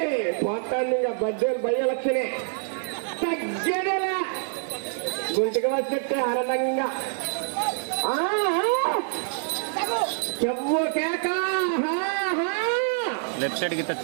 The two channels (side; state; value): left; silent; 61 dB below the other